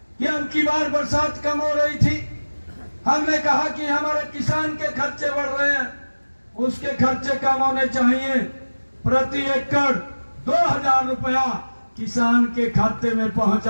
कि अब की बार बरसात कम हो रही थी, हमने कहा कि हमारे किसान के खर्चे बढ़ रहे हैं, उसके खर्चे कम होने चाहिए। प्रति एकड़ 2,000 रुपया किसान के खाते में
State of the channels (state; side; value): inverted; both; correlation -1.00